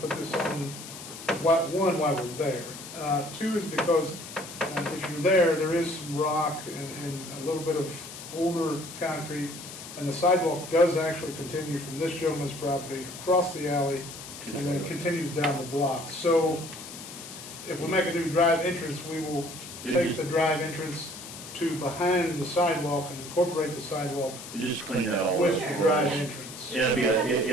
this on, one, why we're there. 2 is because if you're there is some rock and a little bit of older concrete, and the sidewalk does actually continue from this gentleman's property across the alley and then continues down the block. So if we make a new drive entrance, we will take the drive entrance to behind the sidewalk and incorporate the sidewalk You just clean that all with up. the drive entrance. Yeah,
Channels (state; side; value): noise; left; hiss, 12 dB below the sound